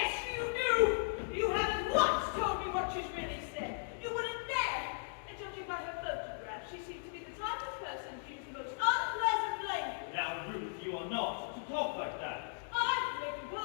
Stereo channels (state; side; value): silent; right; digital silence